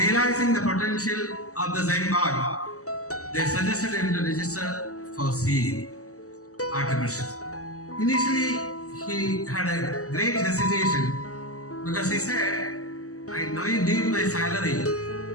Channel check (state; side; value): late; right; 0.66 ms